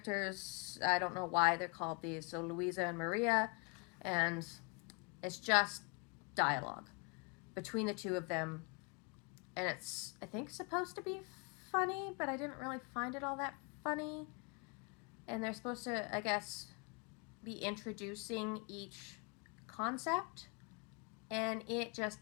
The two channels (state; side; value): quieter; right; 32.9 dB